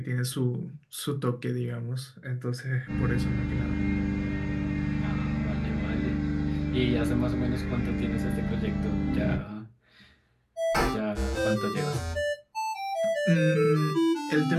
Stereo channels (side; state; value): both; identical; correlation 1.00